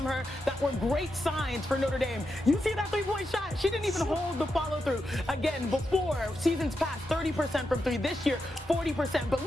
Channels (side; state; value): both; normal; correlation 0.86